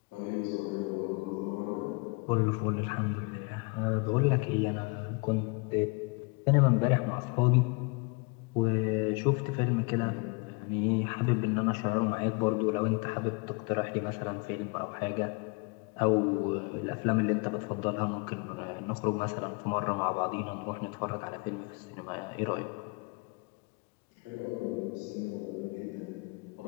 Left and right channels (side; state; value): right; quieter; 30.9 dB